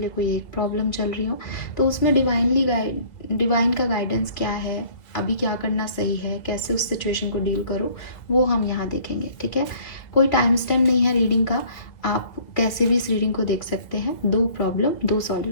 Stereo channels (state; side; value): late; right; 2.2 ms